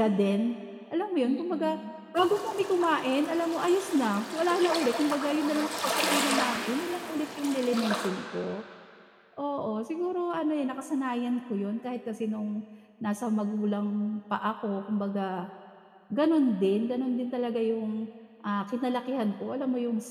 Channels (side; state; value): both; identical; correlation 1.00